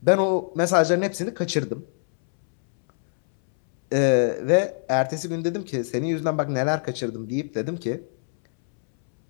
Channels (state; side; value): silent; right; 63 dB below the other